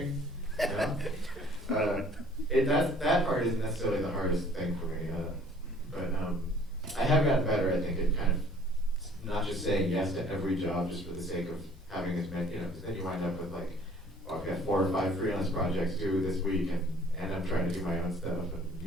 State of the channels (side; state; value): both; normal; correlation 0.54